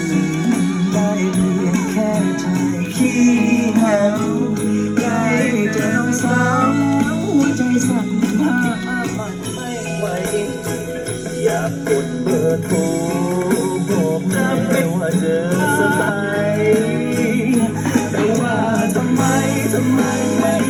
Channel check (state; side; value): identical; both; correlation 1.00